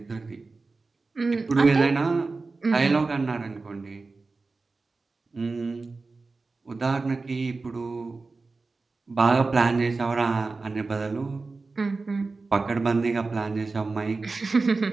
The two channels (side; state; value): left; quieter; 3.8 dB